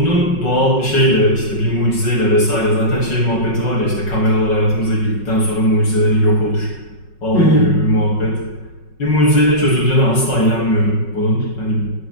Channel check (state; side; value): late; right; 5.4 ms